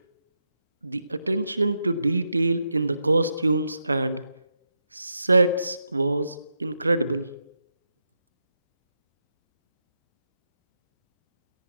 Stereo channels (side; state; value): both; inverted; correlation -0.85